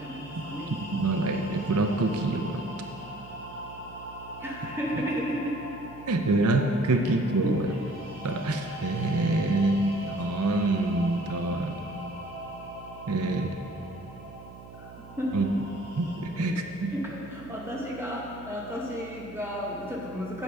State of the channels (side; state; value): right; noise; hum, 17 dB below the sound